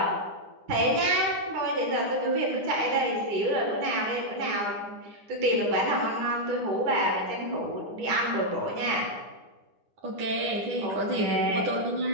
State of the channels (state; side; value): late; left; 9.8 ms